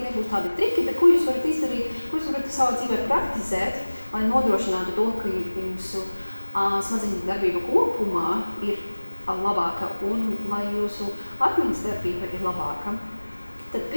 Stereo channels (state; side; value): inverted; both; correlation -1.00